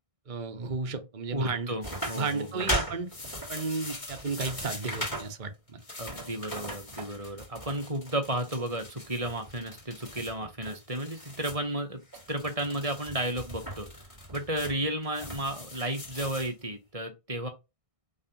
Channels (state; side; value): late; left; 1.6 ms